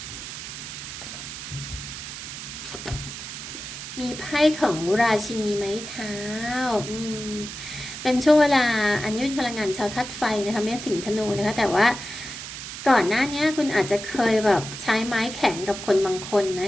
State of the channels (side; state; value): right; noise; hiss, 9 dB below the sound